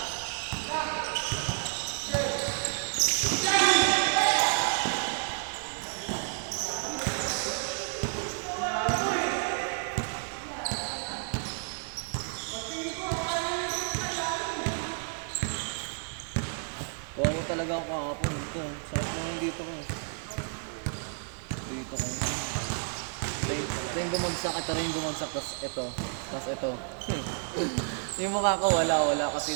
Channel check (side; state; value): left; silent; 57 dB below the other